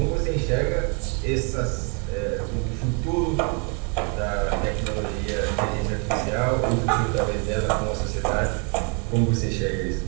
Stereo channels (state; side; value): quieter; left; 36.8 dB